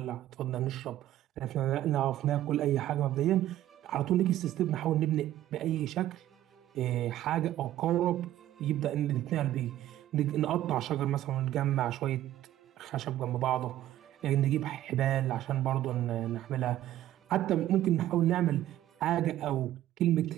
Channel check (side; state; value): left; quieter; 13.3 dB